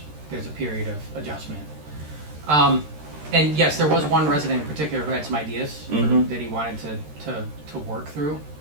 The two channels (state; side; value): late; left; 13 ms